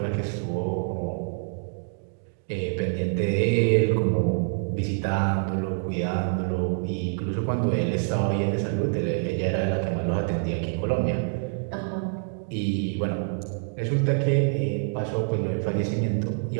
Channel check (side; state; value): left; silent; 61 dB below the other